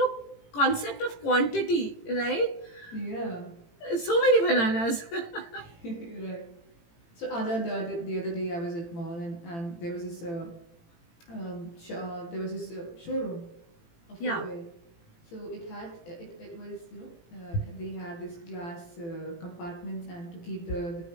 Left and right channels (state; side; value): late; right; 18 ms